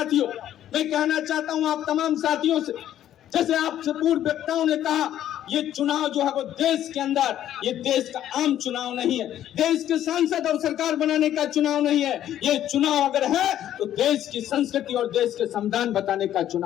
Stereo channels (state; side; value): quieter; right; 11.6 dB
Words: मैं कहना चाहता हूं आप तमाम साथियों से, जैसे आपसे पूर्व वक्ताओं ने कहा, ये चुनाव जो है वो देश के अंदर, ये देश का आम चुनाव नहीं है, देश के सांसद और सरकार बनाने का चुनाव नहीं है। ये चुनाव अगर है तो देश की संस्कृति और देश के संविधान बताने का